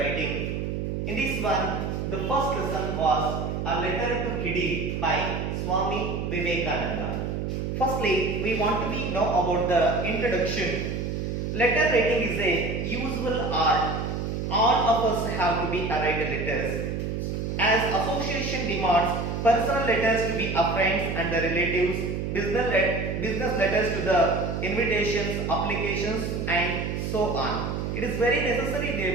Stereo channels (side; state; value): right; noise; hum, 2 dB below the sound